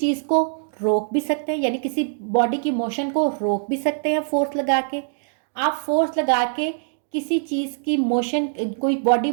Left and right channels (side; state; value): left; silent; digital silence